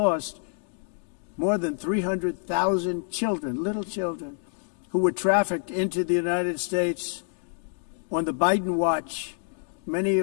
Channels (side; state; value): right; silent; digital silence